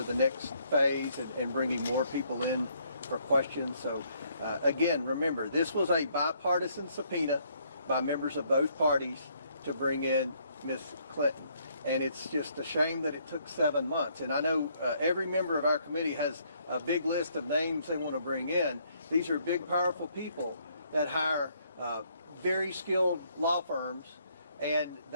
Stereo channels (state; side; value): inverted; both; correlation -0.68